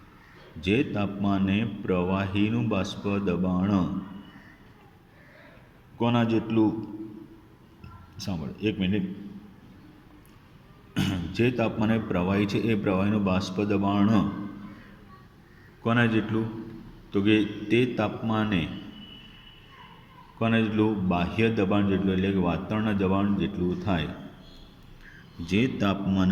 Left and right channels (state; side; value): identical; both; correlation 1.00